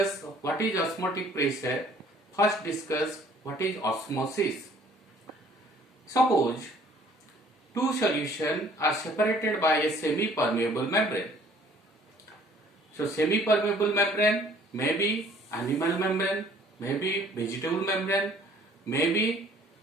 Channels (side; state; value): both; normal; correlation 0.56